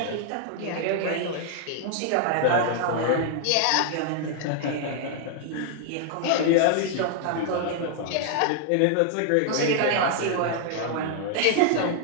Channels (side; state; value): both; different; correlation 0.00